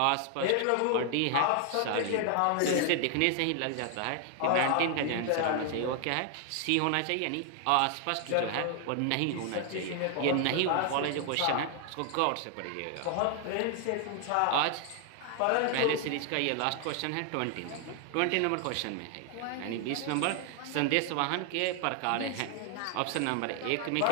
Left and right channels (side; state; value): both; different; correlation 0.00